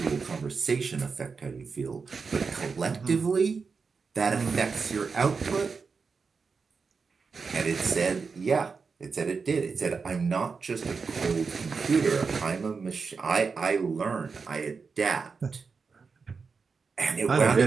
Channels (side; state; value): left; quieter; 5.0 dB